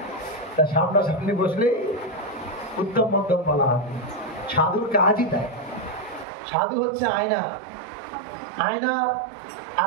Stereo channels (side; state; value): left; drops out; at 6.2 s